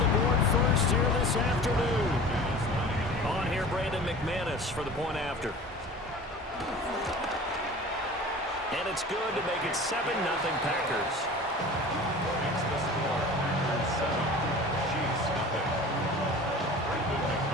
board first here this afternoon. On here, Brandon McManus for the point after. And it's good to make it 7-0 Packers.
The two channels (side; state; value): both; normal; correlation 0.40